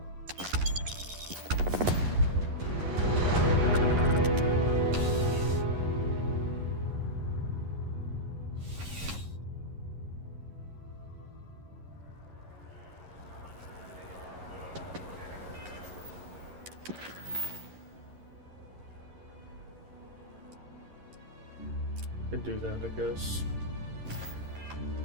Can do that, I guess.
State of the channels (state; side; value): late; left; 11 ms